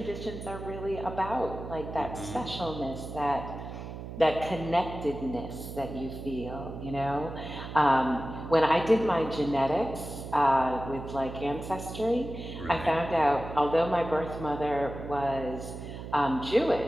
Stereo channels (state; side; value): noise; right; hum, 9 dB below the sound